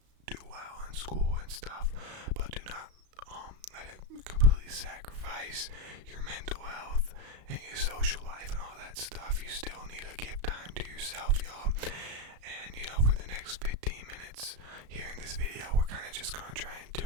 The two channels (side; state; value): left; late; 35 ms